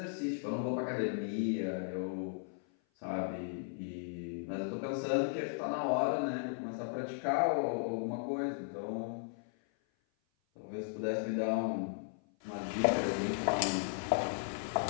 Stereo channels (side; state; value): right; silent; 54 dB below the other